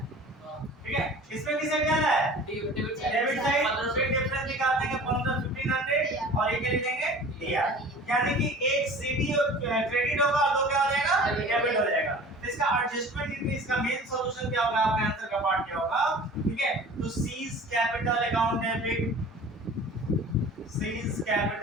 ठीक है, इसमें किस साइड ज्यादा है? Debit side. डेबिट साइड, फिर डिफरेंस निकाल देंगे 1,500 और ये क्या लिखेंगे? डीआर। यानी कि एक सीडी क्रेडिट होगा और दो क्या हो जाएगा? डेबिट हो जाएगा। तो इसका एडजस्टमेंट इनकी, इसका मेन सॉल्यूशन क्या होगा? आपके आंसर का पार्ट क्या होगा? ठीक है, तो seize capital account debit, seize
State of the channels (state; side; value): normal; both; correlation 0.43